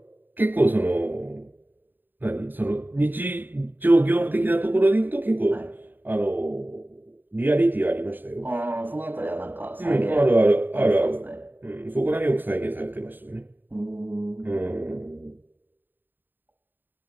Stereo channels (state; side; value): late; left; 0.091 ms